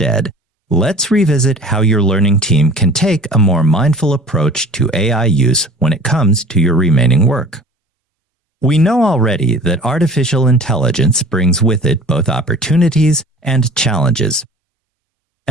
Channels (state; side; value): normal; both; correlation 0.44